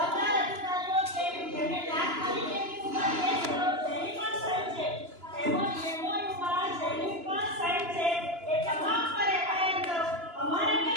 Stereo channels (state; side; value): late; left; 2.9 ms